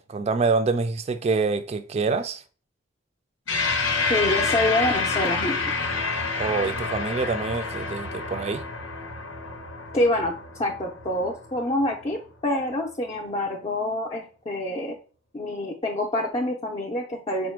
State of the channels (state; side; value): normal; both; correlation 0.24